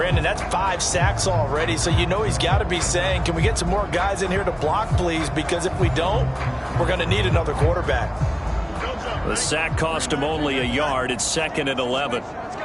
that's 5 sacks already, so you know he's got to be saying, can we get some more guys in here to block, please? Because if we don't, we're going to need another quarterback. The sack cost him only a yard. It's 2nd and 11.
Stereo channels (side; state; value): both; identical; correlation 1.00